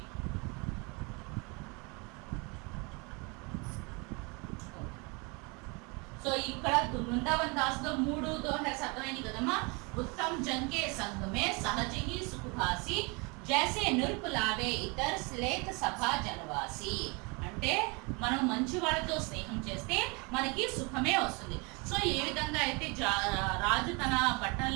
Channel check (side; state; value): left; quieter; 29.8 dB